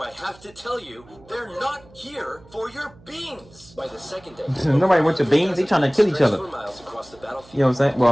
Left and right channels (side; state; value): right; noise; hum, 25 dB below the sound